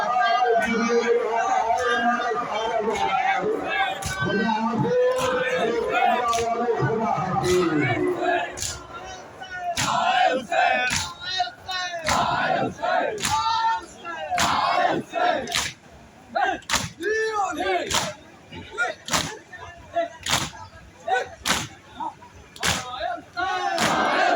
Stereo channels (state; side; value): identical; both; correlation 1.00